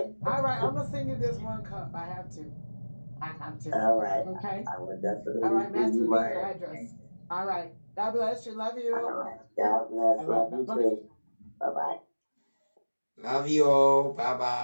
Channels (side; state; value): both; inverted; correlation -1.00